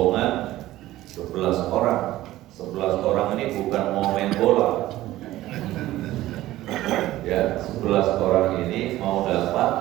11 orang. 11 orang ini bukan mau main bola. Ya, 11 orang ini mau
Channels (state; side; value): quieter; left; 15.6 dB